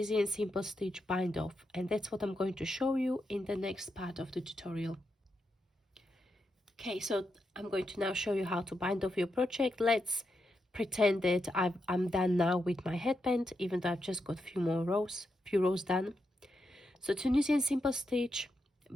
simple stitch bind off. And that's what I'm going to show you in the next part of the tutorial. Okay, so I'm going to now show you how to bind off your project. Let's pretend that I'm done now with my headband, even though I've just got few rows done. So Tunisian simple stitch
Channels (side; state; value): both; normal; correlation 0.84